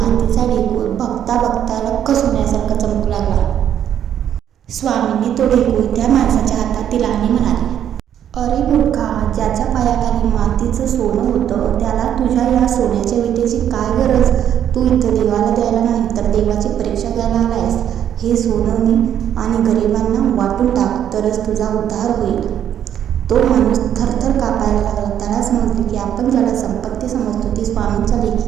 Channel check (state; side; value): quieter; left; 9.9 dB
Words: ढेकूळ बघता बघता लख्ख सोन्यासारखा चमकू लागला. स्वामींनी तो ढेकूळ त्या माणसाच्या हातात दिला आणि म्हणाले, अरे मूर्खा, ज्याच्या पायाखाली मातीचं सोनं होतं त्याला तुझ्या या सोन्याच्या विटेची काय गरज? तू इथं देवाला द्यायला नाही तर देवाची परीक्षा घ्यायला आलायस. हे सोनं आणि गरिबांना वाटून टाक, तरच तुझा उद्धार होईल. तो माणूस थरथर कापायला लागला. त्याला समजले की आपण ज्याला संपत्ती समजतो ती स्वामींच्या